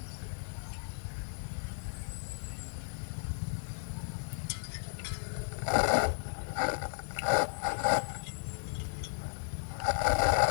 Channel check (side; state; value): right; silent; digital silence